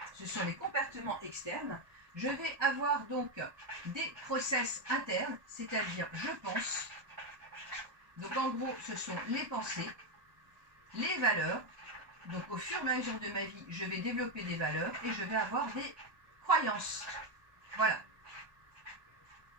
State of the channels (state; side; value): late; left; 1.2 ms